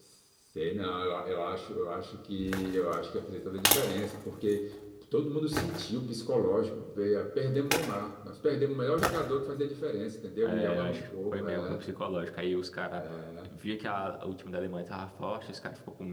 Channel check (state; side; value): identical; both; correlation 1.00